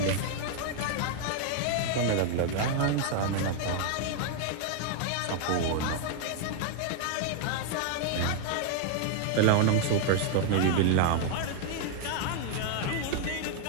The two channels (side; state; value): both; different; correlation 0.00